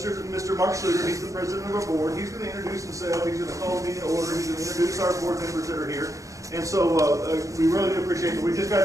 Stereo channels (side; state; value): left; late; 0.16 ms